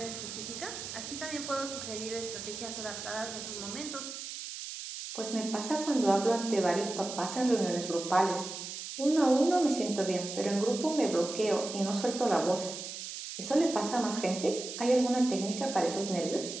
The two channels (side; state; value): right; noise; hiss, 8 dB below the sound